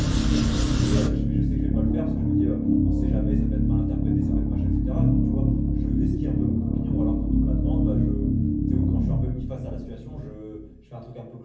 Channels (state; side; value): identical; both; correlation 1.00